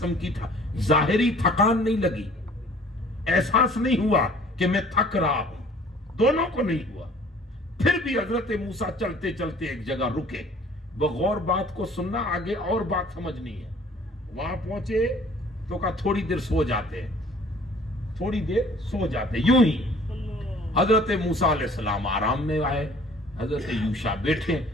کی ظاہری تھکان نہیں لگی، احساس نہیں ہوا کہ میں تھک رہا ہوں، دونوں کو نہیں ہوا. پھر بھی حضرت موسیٰ چلتے چلتے ایک جگہ رکے، بغور بات کو سننا، آگے اور بات سمجھنی ہے. وہاں پہنچے تو کہا تھوڑی دیر سو جاتے ہیں، تھوڑی دیر سو جاتے، یوں ہی حضرت موسیٰ علیہ السلام آرام میں آئے، حضرت یوشع بیٹھے،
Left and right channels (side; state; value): both; normal; correlation 0.53